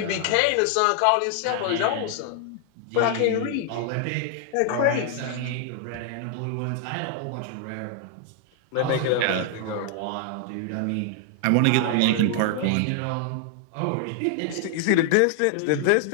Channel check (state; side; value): different; both; correlation 0.00